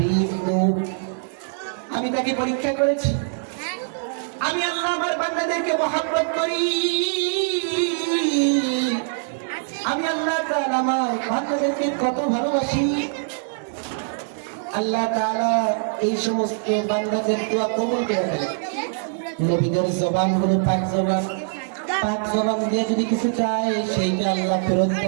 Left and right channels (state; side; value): silent; left; digital silence